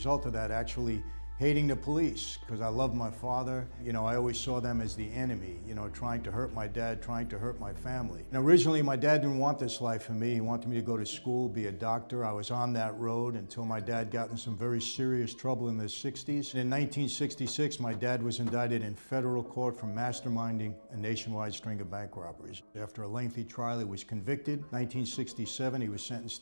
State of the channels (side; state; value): both; inverted; correlation -1.00